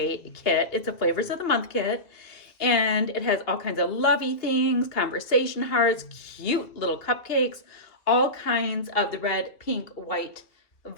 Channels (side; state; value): right; late; 2.4 ms